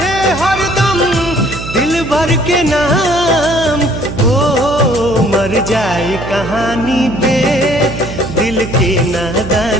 हरदम दिल भर के नाम, ओ मर जाए कहानी पे दिल के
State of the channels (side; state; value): right; noise; hum, 9 dB below the sound